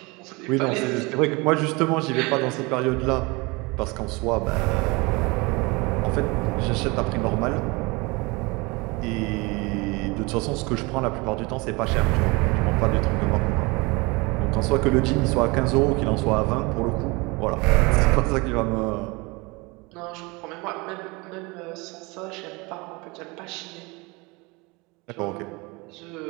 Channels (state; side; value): quieter; left; 25.9 dB